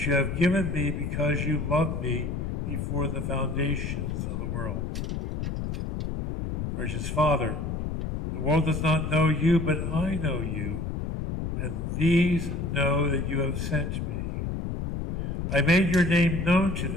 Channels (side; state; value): left; noise; rumble, 3 dB below the sound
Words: you have given me because you loved me before the foundations of the world. Gracious Father, the world does not know you, but I know you, and these know that you have sent me. I made your name known to